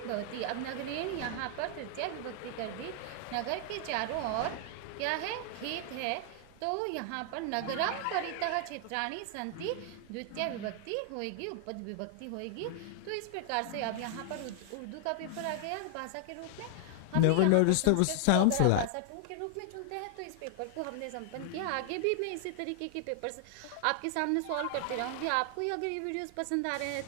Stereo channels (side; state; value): both; different; correlation 0.00